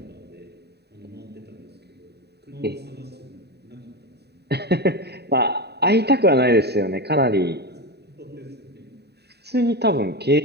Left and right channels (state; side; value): late; left; 0.48 ms